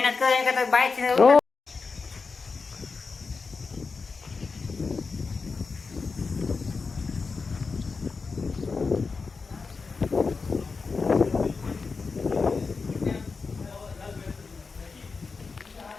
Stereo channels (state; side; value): quieter; right; 4.6 dB